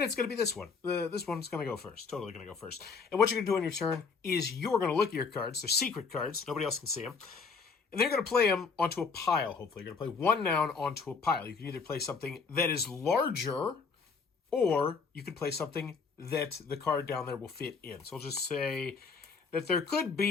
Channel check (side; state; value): right; quieter; 5.1 dB